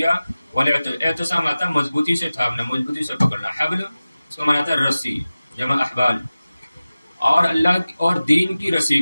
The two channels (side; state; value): both; inverted; correlation -0.97